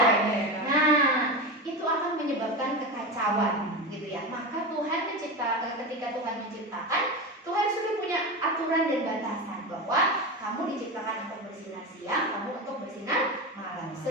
Nah, itu akan menyebabkan kekacauan, gitu ya. Maka ketika Tuhan menciptakan, Tuhan sudah punya aturan dan batasan bahwa kamu diciptakan untuk bersinar siang, kamu untuk bersinar malam,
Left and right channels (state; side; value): normal; both; correlation 0.21